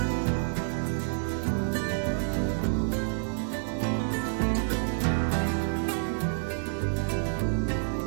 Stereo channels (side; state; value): left; silent; digital silence